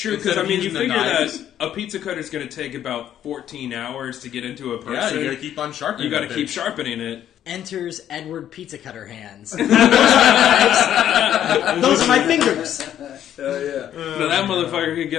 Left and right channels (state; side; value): quieter; right; 10.8 dB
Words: because, Instead I of mean, you using the figure knives. that a pizza cutter is going to take about 14 hours to get into a person. Yeah, you got to keep on sharpening You got to that keep bitch. sharpening it. Enters Edward Pizza Cutter hands. Those are my fingers. Hell yeah. Now that motherfucker could